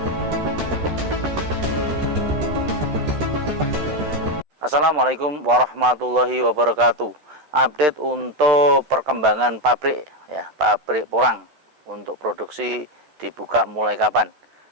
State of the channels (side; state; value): left; late; 13 ms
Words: Assalamualaikum warahmatullahi wabarakatuh. Update untuk perkembangan pabrik ya, pabrik porang untuk produksi dibuka mulai kapan.